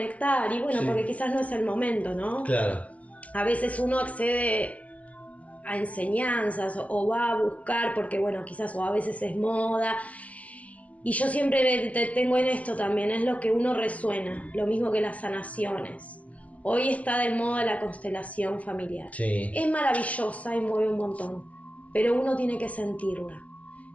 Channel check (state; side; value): late; right; 0.067 ms